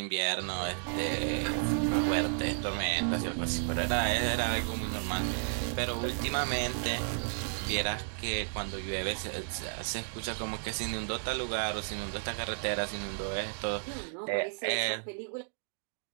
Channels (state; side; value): silent; left; digital silence